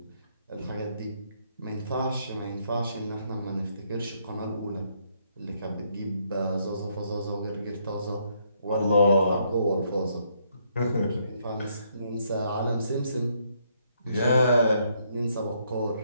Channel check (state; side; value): inverted; both; correlation -0.72